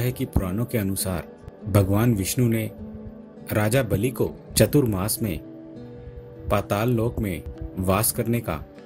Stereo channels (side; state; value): both; identical; correlation 1.00